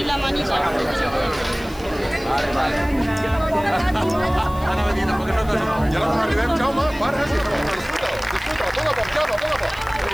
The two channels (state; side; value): noise; left; hiss, 21 dB below the sound